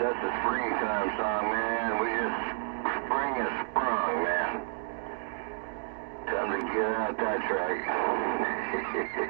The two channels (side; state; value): left; silent; digital silence